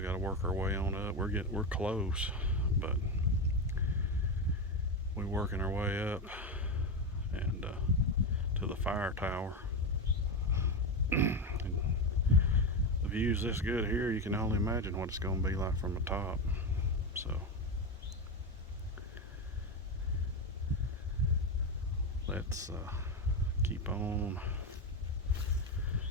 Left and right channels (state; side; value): normal; both; correlation 0.14